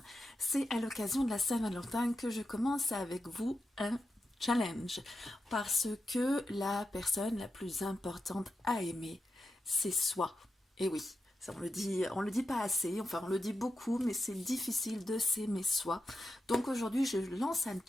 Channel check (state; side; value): normal; both; correlation 0.88